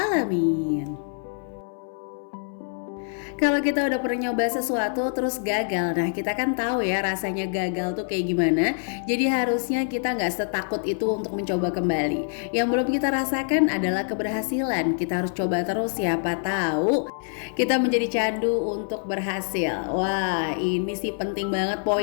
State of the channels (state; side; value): silent; right; 62 dB below the other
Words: Kalau kita udah pernah nyoba sesuatu terus gagal, nah kita kan tahu ya rasanya gagal tuh kayak gimana. Jadi harusnya kita nggak setakut itu untuk mencoba kembali. Yang belum kita rasakan adalah keberhasilan. Kita harus coba terus, siapa tahu kita menjadi candu untuk berhasil. Wah, ini sih penting banget